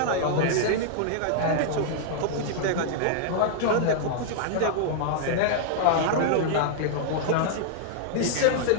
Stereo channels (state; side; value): different; both; correlation -0.01